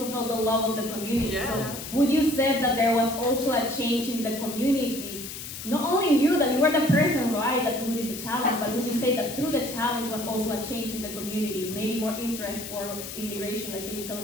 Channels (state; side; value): noise; left; hiss, 9 dB below the sound